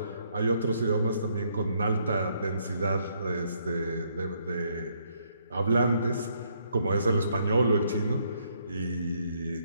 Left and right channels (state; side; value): inverted; both; correlation -0.72